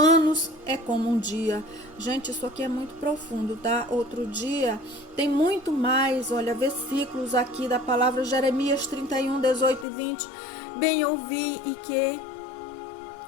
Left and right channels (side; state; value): right; drops out; at 9.9 s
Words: é como um dia. Gente, isso aqui é muito profundo, tá? Outro dia tem muito mais, olha, versículos aqui da palavra. Jeremias 31:18-20. Bem ouvi e que